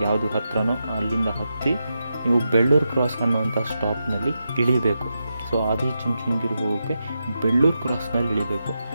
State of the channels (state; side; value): inverted; both; correlation -0.87